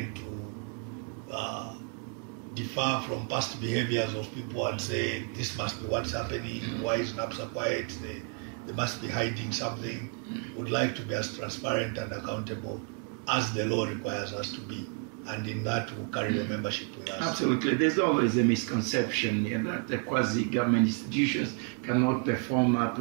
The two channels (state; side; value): quieter; left; 38.3 dB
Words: to differ from past behaviors of people and say, this must be what's happening, why is NAPSA quiet, they must be hiding something. Would like to be as transparent and accountable as the law requires us to be. And in that, we'll carry the membership with us. Absolutely. There's always a misconception that the quasi-government institutions cannot perform